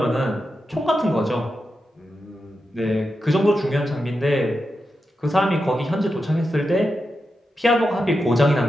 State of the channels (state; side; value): normal; both; correlation 0.88